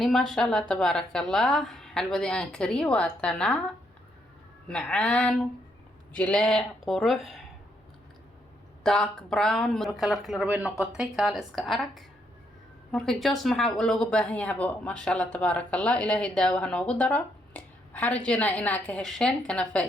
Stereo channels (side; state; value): both; normal; correlation 0.75